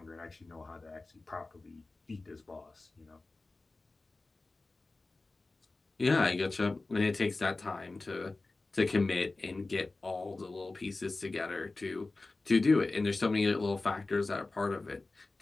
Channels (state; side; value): quieter; right; 3.3 dB